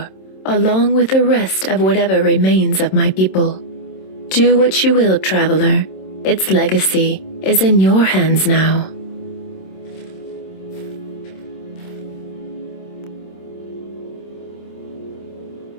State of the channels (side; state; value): right; late; 26 ms